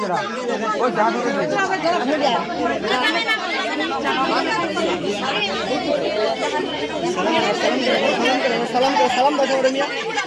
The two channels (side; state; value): both; identical; correlation 1.00